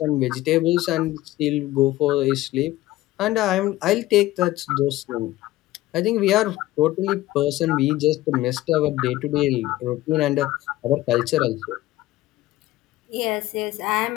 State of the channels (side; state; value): right; quieter; 16.5 dB